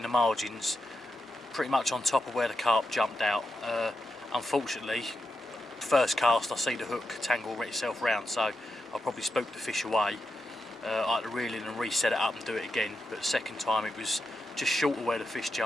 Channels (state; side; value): normal; both; correlation 0.87